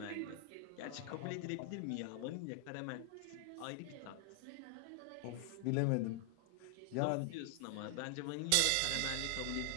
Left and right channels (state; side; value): different; both; correlation 0.00